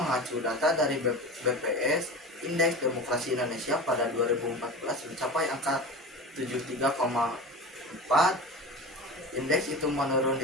data dari BPS, indeks demokrasi Indonesia pada 2014 mencapai angka 73,4. Indeks itu menurun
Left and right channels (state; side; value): normal; both; correlation 0.31